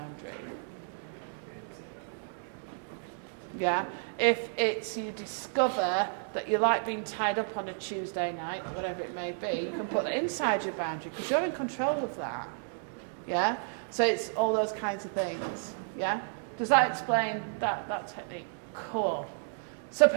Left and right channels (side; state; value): left; silent; digital silence